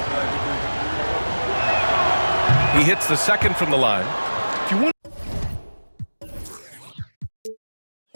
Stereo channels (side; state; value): both; inverted; correlation -1.00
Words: He hits the second from the line. If you want